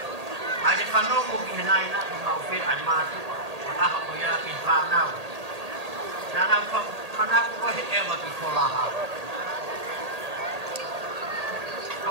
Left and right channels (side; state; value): left; late; 1.8 ms